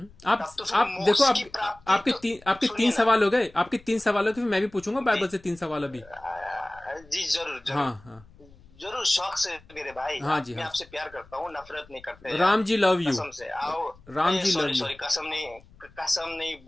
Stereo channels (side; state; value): left; noise; rumble, 25 dB below the sound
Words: तब तो फिर आप देखो, मोक्ष की प्राप्ति तो, आपके तीन सुनिए ना। सवाल हो गए, आपके तीन सवाल हो गए, फिर मैं भी पूछूंगा जी बाइबल से तीन सवाल अभी। जी जरूर हाँ जरूर हाँ जरूर, शौक से मेरे भाई, हाँ आप जी, मैं हाँ आपसे प्यार करता हूँ, नफरत नहीं करते जी। यार। Ram ji love you. कसम से आओ। Ram ji love sorry you. Sorry, कसम नहीं